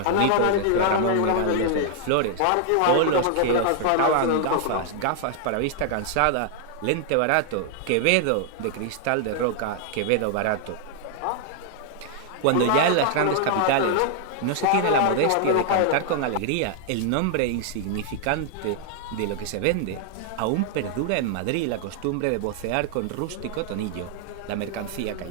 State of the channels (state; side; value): different; both; correlation 0.00